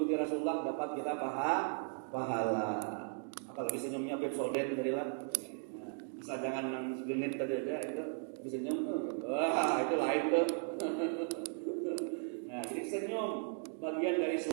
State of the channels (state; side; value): silent; left; 53 dB below the other